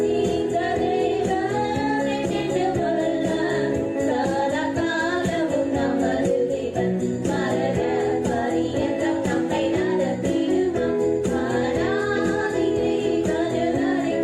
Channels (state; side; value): identical; both; correlation 1.00